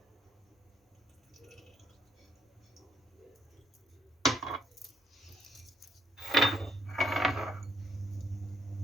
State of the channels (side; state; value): both; normal; correlation 0.69